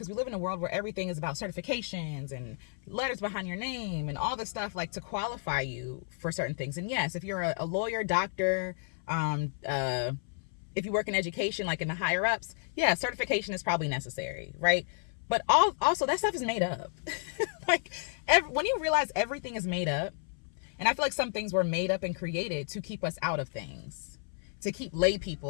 we live in a world where everything is about certifications and letters behind your name and all this stuff, like, to qualify you for certain things. And yes, if you're a lawyer, doctor, if you work in education, like in the higher ups, yeah, certification is probably necessary, right? But also that stuff is made up. When you realize everything is made up, and I feel like some things were made up and created to keep us out of things, to keep lay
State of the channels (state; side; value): silent; right; 57 dB below the other